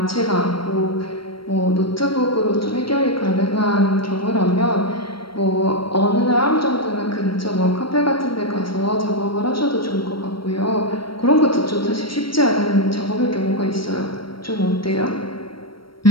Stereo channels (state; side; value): late; right; 0.74 ms